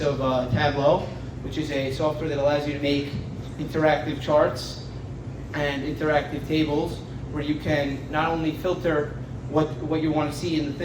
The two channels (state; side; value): identical; both; correlation 1.00